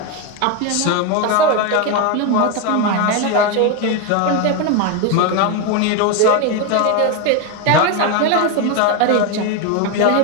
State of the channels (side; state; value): both; different; correlation 0.02